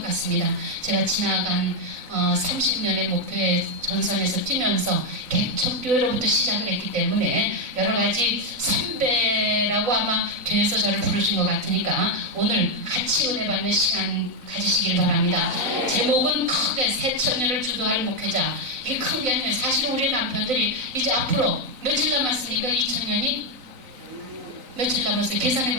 같습니다. 제가 지나간 30년의 목표의 전선에서 뛰면서 개척교회로부터 시작을 했기 때문에 여러 가지 선배라고 아마 교회에서 저를 부르신 것 같으니까 오늘 같이 은혜 받는 시간 가지시길 바랍니다. 제목은 크게 새천년을 주도할 목회자. 이게 큰 게 아니에요. 사실 우리 남편들이 이제 앞으로 며칠 남았습니까? 2000년이? 며칠 남았어요? 계산해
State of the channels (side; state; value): left; late; 4.0 ms